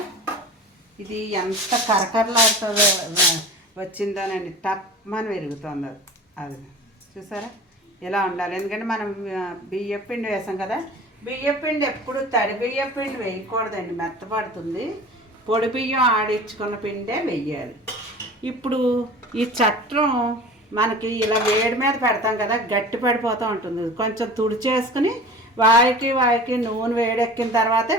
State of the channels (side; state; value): both; normal; correlation 0.39